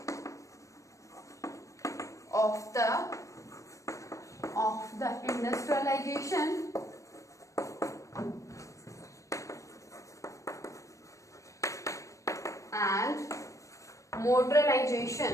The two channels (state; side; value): late; right; 0.15 ms